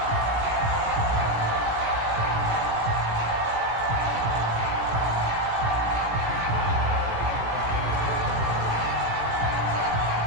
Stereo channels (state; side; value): late; left; 18 ms